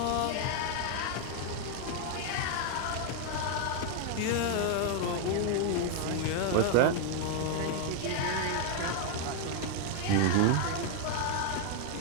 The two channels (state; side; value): different; both; correlation 0.01